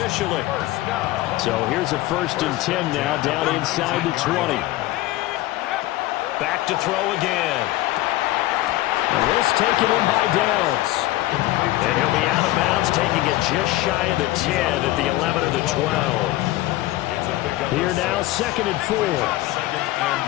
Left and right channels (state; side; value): quieter; right; 17.0 dB